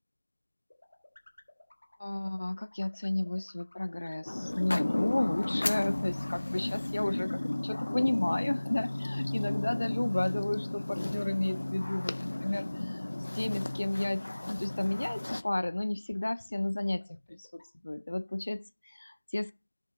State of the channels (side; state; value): both; inverted; correlation -1.00